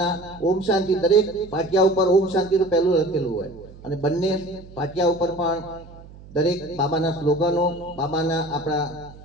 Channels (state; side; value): noise; right; hum, 19 dB below the sound